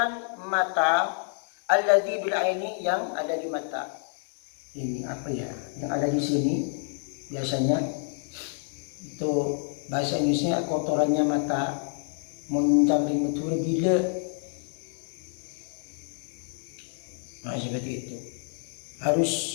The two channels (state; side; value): silent; right; 59 dB below the other